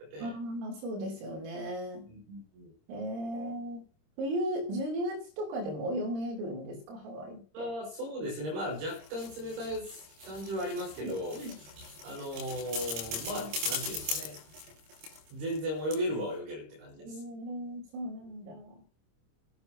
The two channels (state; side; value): late; left; 26 ms